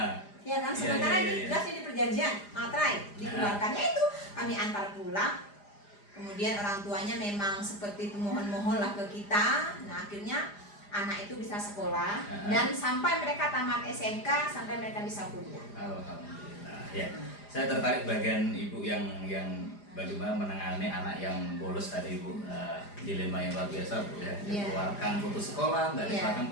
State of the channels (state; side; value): late; right; 4.9 ms